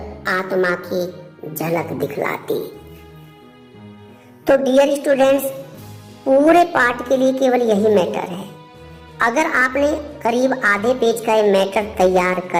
आत्मा की झलक दिखलाती। तो डियर स्टूडेंट्स, पूरे पाठ के लिए केवल यही मैटर है। अगर आपने करीब आधे पेज का ये मैटर तैयार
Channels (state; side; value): identical; both; correlation 1.00